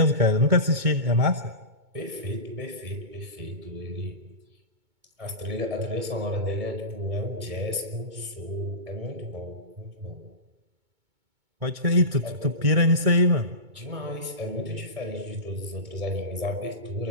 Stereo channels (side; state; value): left; late; 2.2 ms